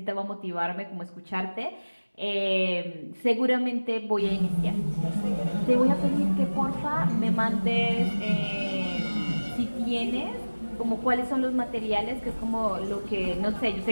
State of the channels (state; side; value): inverted; both; correlation -1.00